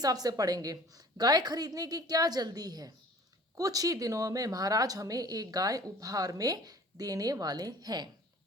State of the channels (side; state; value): both; normal; correlation 0.48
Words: से पढ़ेंगे। गाय खरीदने की क्या जल्दी है? कुछ ही दिनों में महाराज हमें एक गाय उपहार में देने वाले हैं।